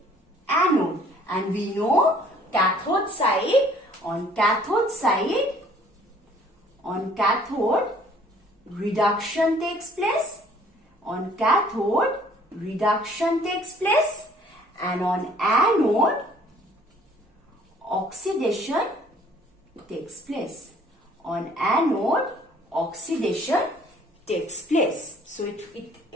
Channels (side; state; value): both; normal; correlation 0.57